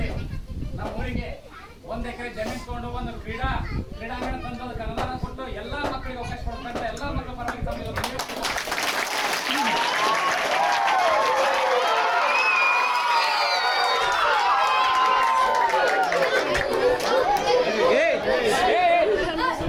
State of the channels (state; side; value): identical; both; correlation 1.00